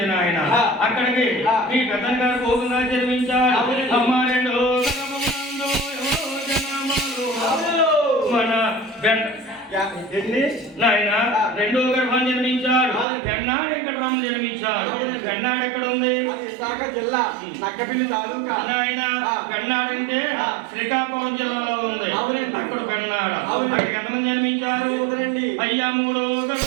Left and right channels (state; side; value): drops out; left; at 13.1 s